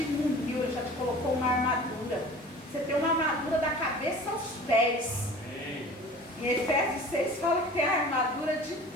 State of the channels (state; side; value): normal; both; correlation 0.42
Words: muniu, ele já te colocou uma armadura. Você tem uma armadura da cabeça aos pés. Amém. Em Efésios 6 fala que tem a armadura de